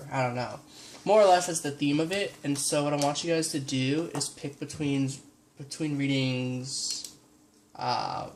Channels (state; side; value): identical; both; correlation 1.00